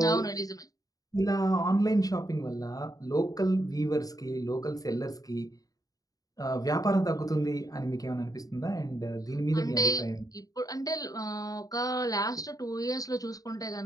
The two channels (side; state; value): right; late; 0.18 ms